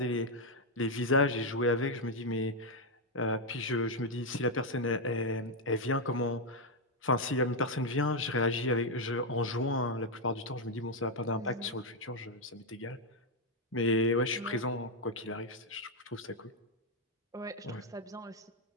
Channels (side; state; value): both; normal; correlation 0.01